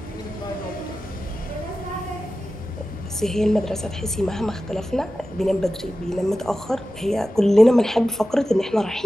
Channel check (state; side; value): normal; both; correlation 0.94